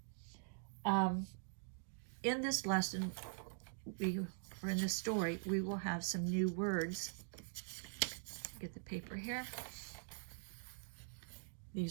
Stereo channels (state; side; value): silent; left; digital silence